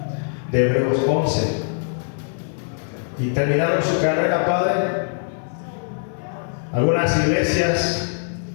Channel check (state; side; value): silent; right; 64 dB below the other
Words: de Hebreos 11 y terminaron su carrera, Padre. Algunas iglesias